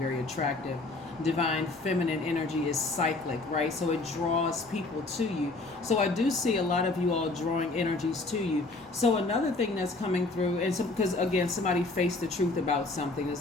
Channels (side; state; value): right; quieter; 3.2 dB